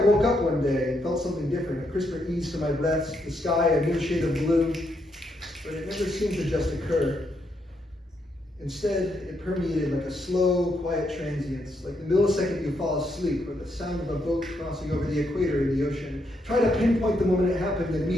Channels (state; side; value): normal; both; correlation 0.78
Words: woke up one day and felt something different, a crisper ease to my breaths, the sky a new shade of blue, but it never seemed to just occur. Instead, it permeated like a slow, quiet transience, like the millisecond you fall asleep or the sound of a boat crossing over the equator in the ocean. Try to pinpoint the moment it happened, and